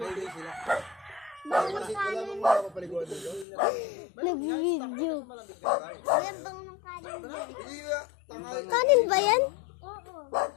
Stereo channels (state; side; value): drops out; right; at 3.5 s